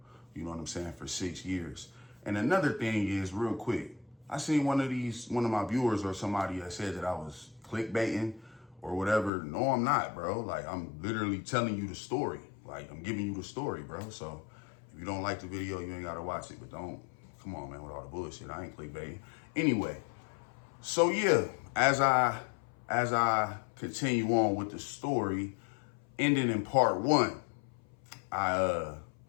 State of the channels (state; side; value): drops out; right; at 9.3 s